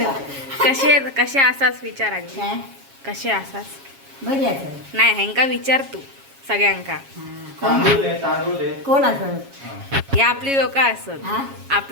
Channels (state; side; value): late; left; 7.3 ms